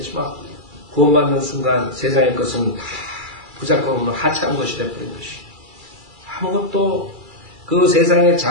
구원받는 순간 세상의 것은 다 부작용없는 하찮은 것이 되어버린 것이. 아무것도 그 세상의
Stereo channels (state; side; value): late; left; 2.3 ms